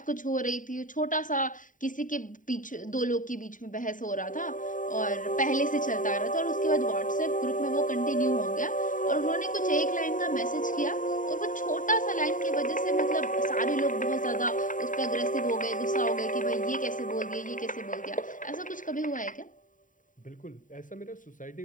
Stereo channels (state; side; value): late; right; 0.38 ms